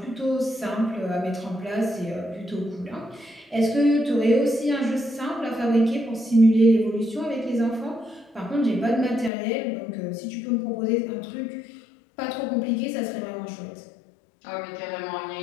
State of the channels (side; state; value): right; drops out; at 9.3 s